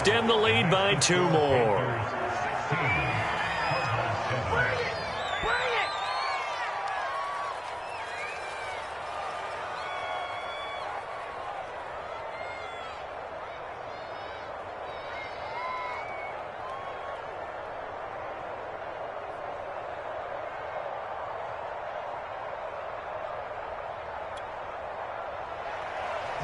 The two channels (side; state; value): both; identical; correlation 1.00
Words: the lead by 2 more.